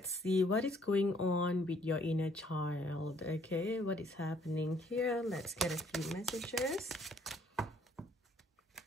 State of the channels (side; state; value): both; normal; correlation 0.63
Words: see what is going on with your inner child. Okay, what is happening here? Let's get a few messages.